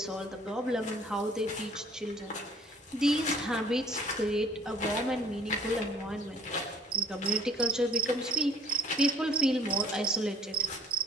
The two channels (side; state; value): both; normal; correlation 0.54